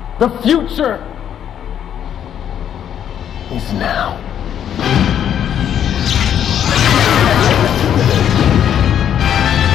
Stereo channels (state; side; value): quieter; right; 9.5 dB